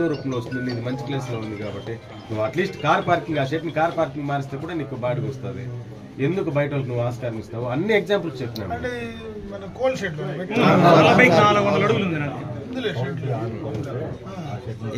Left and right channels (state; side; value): identical; both; correlation 1.00